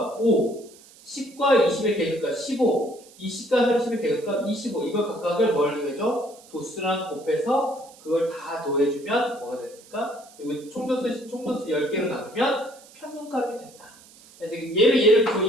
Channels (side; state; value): right; noise; hiss, 24 dB below the sound